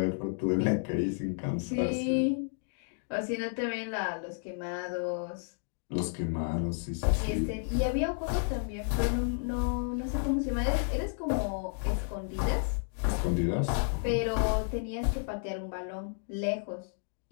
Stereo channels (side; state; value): right; silent; digital silence